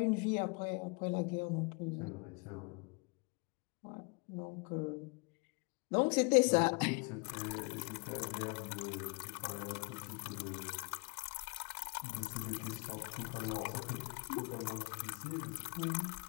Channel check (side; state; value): right; quieter; 31.7 dB